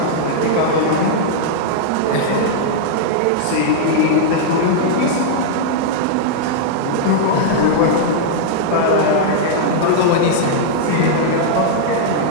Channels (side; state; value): both; different; correlation -0.01